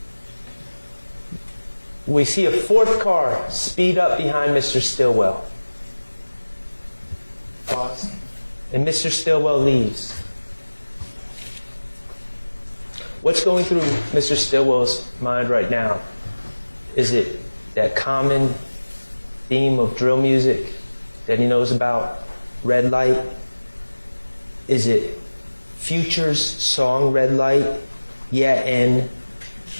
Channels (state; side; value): inverted; both; correlation -1.00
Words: We see a fourth car speed up behind Mr. Stillwell. Pause. And Mr. Stillwell leaves. What's going through Mr. Stillwell's mind right now? Is it that common theme of drill music that he knows about? Red Light? Is it Future's song Red Light? Yeah, and